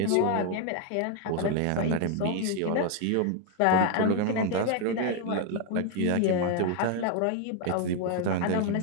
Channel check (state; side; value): different; both; correlation 0.01